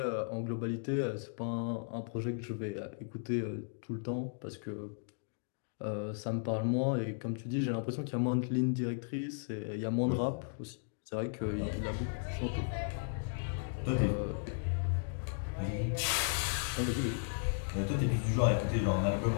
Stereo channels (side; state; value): right; silent; digital silence